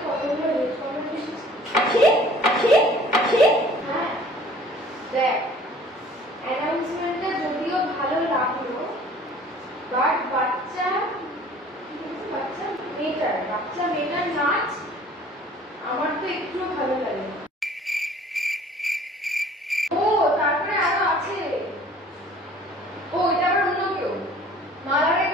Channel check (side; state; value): both; normal; correlation 0.51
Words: কতগুলো রেড কমেন্ট এসেছে? হ্যাঁ দেখ, অ্যানাউন্সমেন্টটা যদিও ভালো লাগলো, বাট বাচ্চা মেয়েটার নাচ আমার তো একটু ভালো লাগে। ও তারপরে আরো আছে, ও এটা আবার অন্য কেউ। মালারের